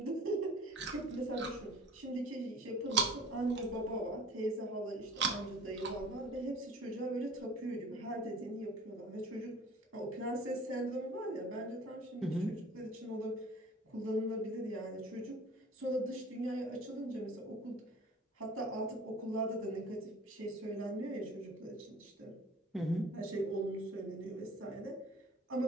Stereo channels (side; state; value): both; normal; correlation 0.45